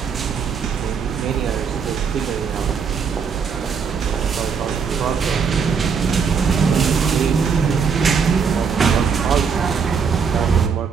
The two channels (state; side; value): quieter; left; 6.2 dB